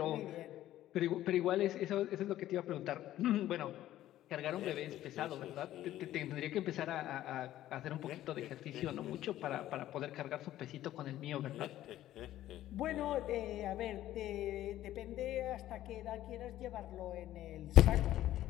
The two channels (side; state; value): right; quieter; 13.5 dB